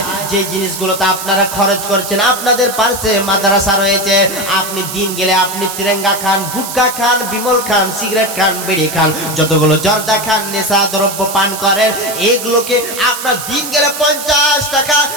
যে জিনিসগুলোতে আপনারা খরচ করছেন, আপনাদের পাশে মাদ্রাসা রয়েছে, আপনি দিন গেলে আপনি তিরঙ্গা খান, গুটকা খান, বিমল খান, সিগারেট খান, বিড়ি খান, যতগুলো জর্দা খান, নেশা দ্রব্য পান করেন, এগুলোকে আপনার দিন গেলে 50 টাকা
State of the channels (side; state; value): right; noise; hiss, 8 dB below the sound